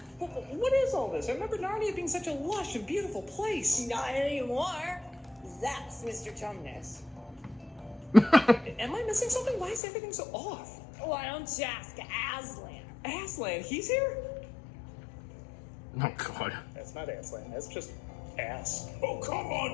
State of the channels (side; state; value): right; drops out; at 9.8 s